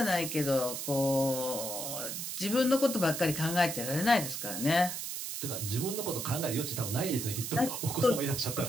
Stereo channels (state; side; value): noise; right; hiss, 5 dB below the sound